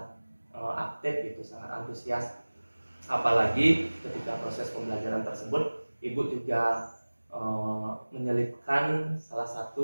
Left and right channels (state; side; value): inverted; both; correlation -1.00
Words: aktif gitu, sangat antusias. Apalagi ketika proses pembelajaran tersebut, Ibu juga menyelipkan salah